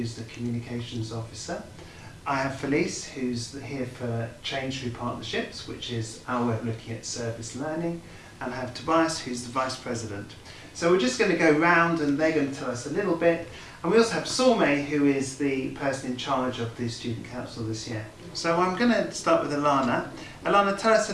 the communications officer. I have Felice, who's here for Change Through Partnerships, which is our way of looking at service learning. And I have Tobias, who's the Vice President. So we're just going to go round and they're going to tell us a little bit. And we also have Sormeh, who is the person in charge of the Student Council this year. So I'm going to start with Alana. Alana, tell us a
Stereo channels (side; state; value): both; identical; correlation 1.00